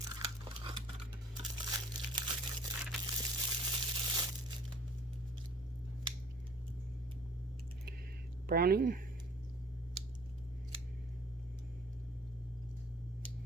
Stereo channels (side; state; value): both; normal; correlation 0.50